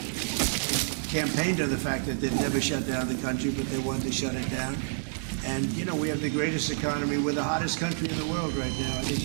Campaigned on the fact that they'd never shut down the country, but they wanted to shut it down. And, you know, we have the greatest economy. We're the hottest country in the world right now. I think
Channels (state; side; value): silent; left; digital silence